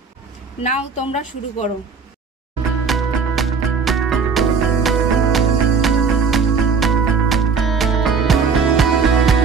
নাও তোমরা শুরু করো।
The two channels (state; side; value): quieter; left; 5.4 dB